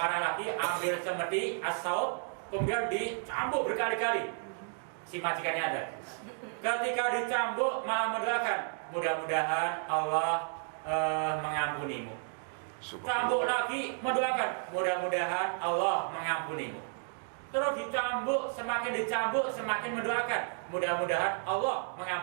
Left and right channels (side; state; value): left; silent; 56 dB below the other